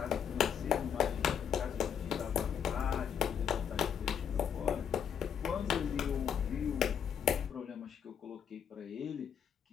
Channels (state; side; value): quieter; right; 8.0 dB